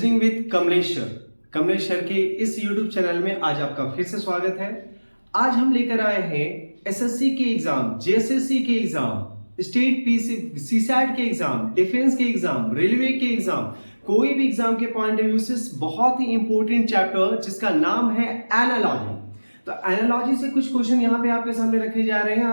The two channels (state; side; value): inverted; both; correlation -1.00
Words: with Kamleshwar के इस YouTube चैनल में आज आपका फिर से स्वागत है। आज हम लेकर आए हैं एसएससी के एग्जाम, जेएसएससी के एग्जाम, स्टेट सीसैट के एग्जाम, डिफेंस के एग्जाम, रेलवे के एग्जाम, कोई भी एग्जाम के पॉइंट ऑफ व्यू से बहुत ही इंपॉर्टेंट चैप्टर जिसका नाम है एनालॉजी। तो एनालॉजी से कुछ क्वेश्चन यहाँ पे आपके सामने रखे जा रहे हैं